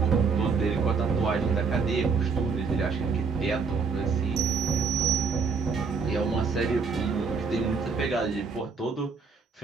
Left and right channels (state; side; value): quieter; left; 5.1 dB